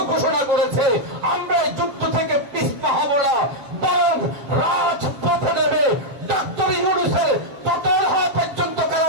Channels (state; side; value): late; left; 7.3 ms